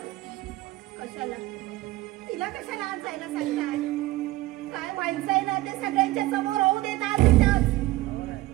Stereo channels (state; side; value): quieter; left; 18.0 dB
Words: कशाला? तिला कशाला आज जायला सांगताय? काय व्हायचंय ना ते सगळ्यांच्या समोर होऊ देतात.